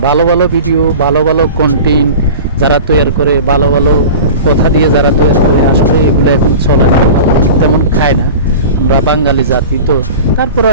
ভালো ভালো ভিডিও, ভালো ভালো কন্টেন্ট যারা তৈরি করে, ভালো ভালো কথা দিয়ে যারা তৈরি করে, আসলে এগুলো এখন চলে না, তেমন খায় না। আমরা বাঙালি জাতি তো, তারপরে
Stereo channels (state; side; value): inverted; both; correlation -0.35